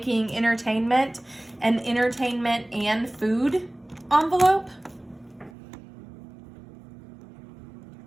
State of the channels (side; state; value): left; drops out; at 5.5 s